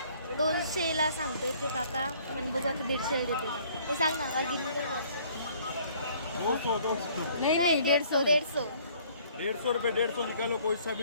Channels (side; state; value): both; inverted; correlation -0.58